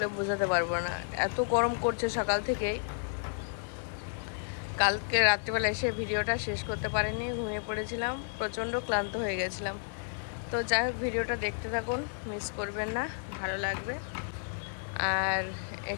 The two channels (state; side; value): silent; right; digital silence